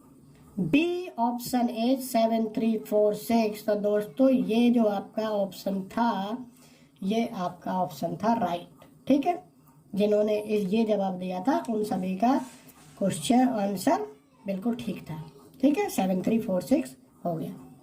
बी ऑप्शन ए 7346। तो दोस्तों ये जो आपका ऑप्शन था ये आपका ऑप्शन था राइट, ठीक है। जिन्होंने ये जवाब दिया था उन सभी का क्वेश्चन आंसर बिल्कुल ठीक था, ठीक है। 7346 हो गया।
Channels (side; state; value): both; identical; correlation 1.00